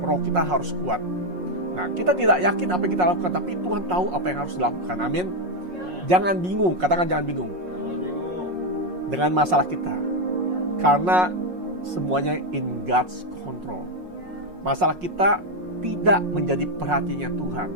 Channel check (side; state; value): left; late; 5.5 ms